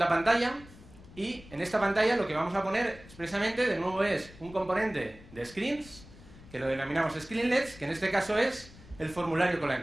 pantalla y en esta pantalla lo que vamos a poner expresamente de nuevo es un componente de screens, que lo denominamos screenlets, que en este caso es el formulario con la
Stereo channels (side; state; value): left; noise; rumble, 20 dB below the sound